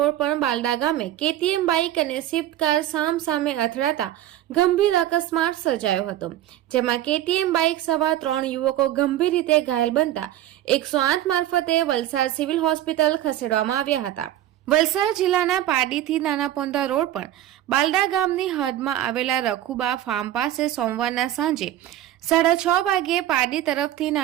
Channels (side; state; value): left; quieter; 12.9 dB